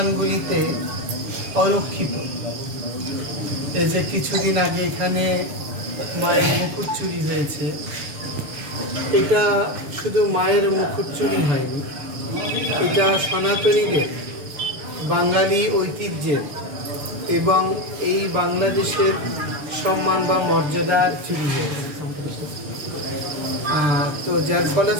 অরক্ষিত। এই যে কিছুদিন আগে এখানে মায়ের মুকুট চুরি হয়েছে, এটা শুধু মায়ের মুকুট চুরি হয়নি, এটা সনাতনীদের বাঙালি ঐতিহ্যের এবং এই বাংলাদেশের সম্মান বা মর্যাদার চুরি হয়েছে। তো যার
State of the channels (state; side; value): late; left; 6.9 ms